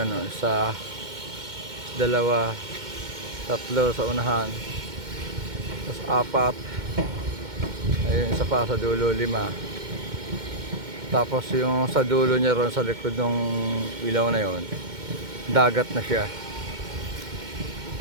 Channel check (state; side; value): late; left; 2.1 ms